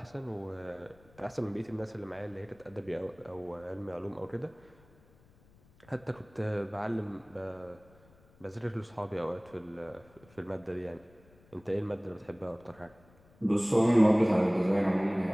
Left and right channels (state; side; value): noise; left; rumble, 28 dB below the sound